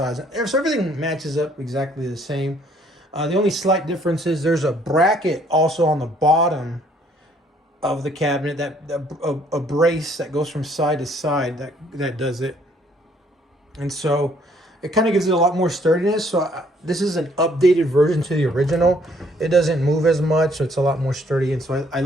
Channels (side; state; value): both; normal; correlation 0.64